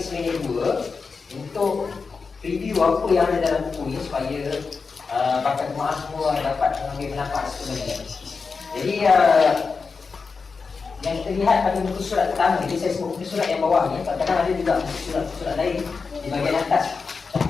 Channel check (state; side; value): quieter; right; 4.8 dB